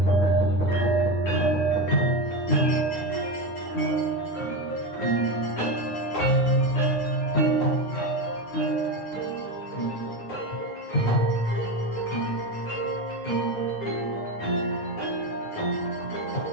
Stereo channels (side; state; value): right; late; 9.6 ms